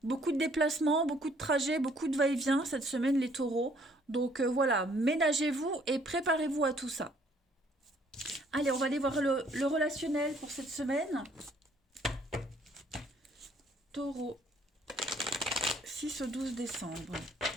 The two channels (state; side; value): normal; both; correlation 0.63